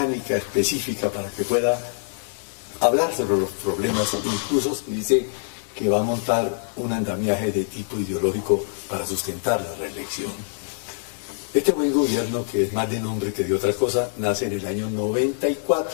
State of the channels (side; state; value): right; silent; digital silence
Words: específica para que pueda hablar sobre los problemas, incluso dice que va a montar un andamiaje de tipo ideológico para sustentar la reelección. Este buen gobierno, que es más de nombre que de otra cosa, nace en el año